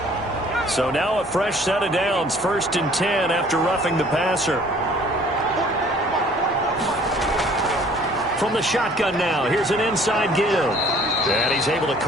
So now a fresh set of downs, 1st and 10 after roughing the passer. From the shotgun now, here's an inside give. And he's able to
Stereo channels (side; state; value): both; normal; correlation 0.55